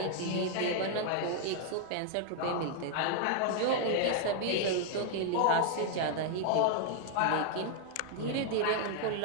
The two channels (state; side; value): different; both; correlation 0.00